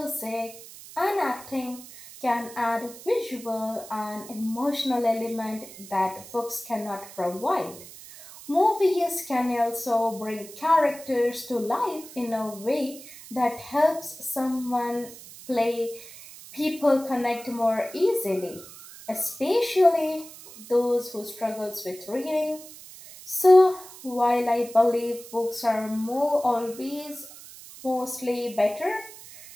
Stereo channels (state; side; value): noise; right; hiss, 17 dB below the sound